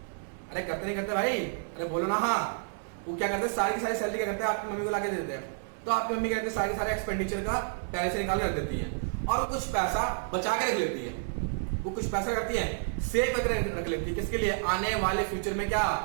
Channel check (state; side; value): silent; left; digital silence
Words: अरे करते नहीं करते भाई? अरे बोलो ना। हाँ, वो क्या करते हैं? सारी की सारी सैलरी क्या करते हैं? आपकी मम्मी को लाके देते हैं। तो आपकी मम्मी कहते हैं सारे सारे एक्सपेंडिचर का पहले से निकाल के रख देती है, और कुछ पैसा बचा के रख लेती है। वो कुछ पैसा करती है सेव करके रख लेती है। किसके लिए? आने वाले फ्यूचर में क्या